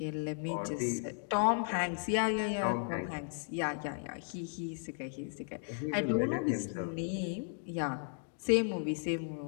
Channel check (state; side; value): silent; right; digital silence